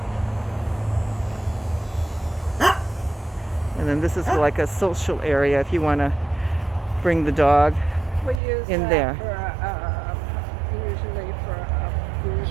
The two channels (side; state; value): left; drops out; at 8.4 s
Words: And then this is like a social area if you want to bring the dog in there. Usually for a group